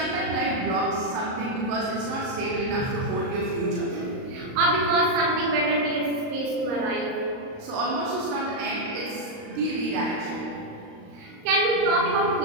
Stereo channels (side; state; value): left; late; 38 ms